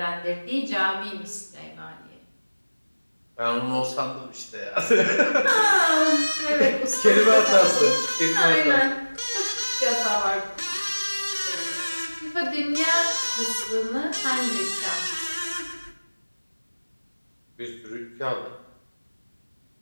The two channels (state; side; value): inverted; both; correlation -1.00